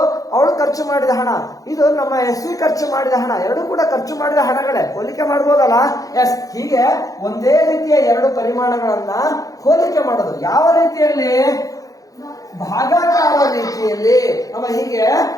ಅವಳು ಖರ್ಚು ಮಾಡಿದ ಹಣ, ಇದು ನಮ್ಮ SV ಖರ್ಚು ಮಾಡಿದ ಹಣ. ಎರಡು ಕೂಡ ಖರ್ಚು ಮಾಡಿದ ಹಣಗಳೇ. ಹೋಲಿಕೆ ಮಾಡ್ಬೋದಲ್ಲ? ಎಸ್. ಹೀಗೆ ಒಂದೇ ರೀತಿಯ ಎರಡು ಪರಿಮಾಣಗಳನ್ನ ಹೋಲಿಕೆ ಮಾಡೋದು. ಯಾವ ರೀತಿಯಲ್ಲಿ? ಭಾಗಾಕಾರ ರೀತಿಯಲ್ಲಿ. ಹೀಗೆ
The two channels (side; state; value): right; late; 0.17 ms